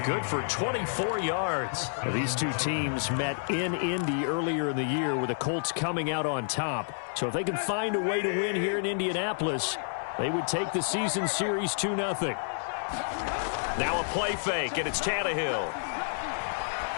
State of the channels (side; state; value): right; silent; digital silence